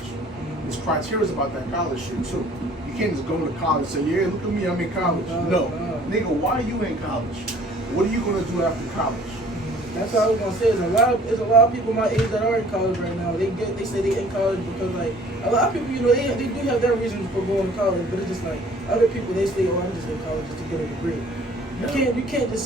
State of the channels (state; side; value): normal; both; correlation 0.54